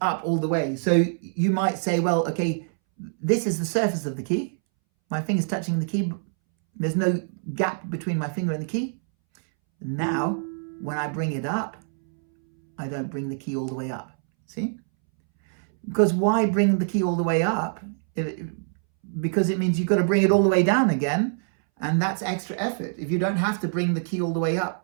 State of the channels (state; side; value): silent; left; 62 dB below the other